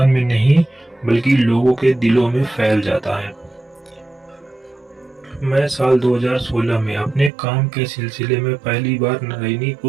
में नहीं बल्कि लोगों के दिलों में फैल जाता है। मैं साल 2016 में अपने काम के सिलसिले में पहली बार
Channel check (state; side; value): drops out; left; at 7.3 s